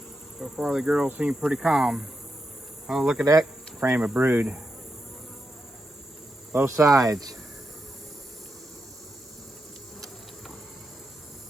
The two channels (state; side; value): normal; both; correlation 0.86